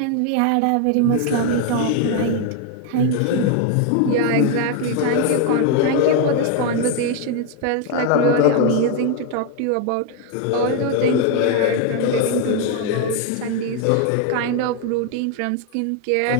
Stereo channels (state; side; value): different; both; correlation 0.01